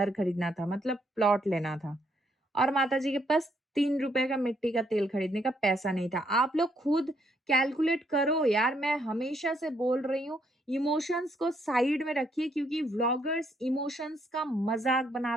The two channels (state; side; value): normal; both; correlation 0.72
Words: खरीदना था, मतलब प्लॉट लेना था। और माताजी के पास ₹3 का मिट्टी का तेल खरीदने का पैसा नहीं था। आप लोग खुद कैलकुलेट करो यार, मैं हमेशा से बोल रही हूँ, इमोशंस को साइड में रखिए क्योंकि व्लॉगर्स इमोशंस का मज़ाक